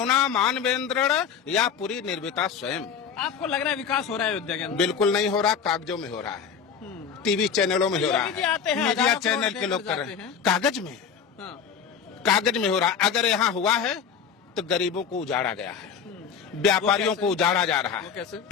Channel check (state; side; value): quieter; right; 7.0 dB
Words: मानवेंद्र या पूरी निर्मिता स्वयं। आपको लग रहा है विकास हो रहा है अयोध्या के अंदर? बिल्कुल नहीं हो रहा, कागजों में हो रहा है, टीवी चैनलों में हो रहा है, मीडिया चैनल के लोग कर रहे हैं। कागज में, कागज में हो रहा है। अगर यहाँ हुआ है तो गरीबों को उजाड़ा गया है, व्यापारियों को उजाड़ा जा रहा है। कैसे?